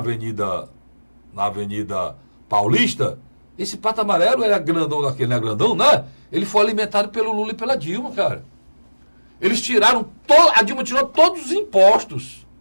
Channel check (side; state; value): both; inverted; correlation -1.00